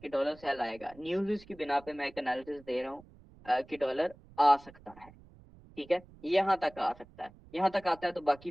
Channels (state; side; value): noise; right; rumble, 23 dB below the sound